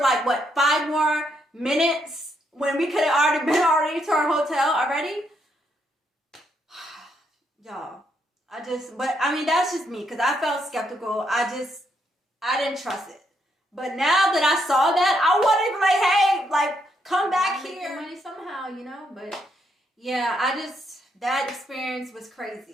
what, 5 more minutes when we could have already been to our hotel already. Y'all, but I mean, that's just me, because I felt skeptical. I didn't trust it. But now that I saw that, I wanted to be like, hey, like, come back here. Make money somehow, you know? But yeah, that experience was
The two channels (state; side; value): normal; both; correlation 0.76